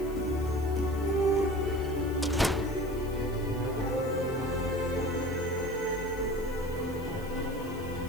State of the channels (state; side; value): noise; left; hiss, 20 dB below the sound